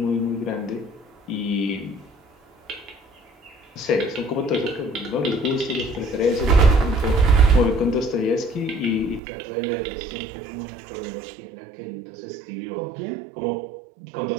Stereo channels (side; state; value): left; drops out; at 9.2 s